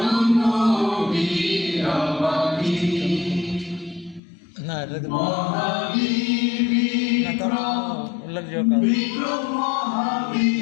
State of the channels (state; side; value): drops out; right; at 4.2 s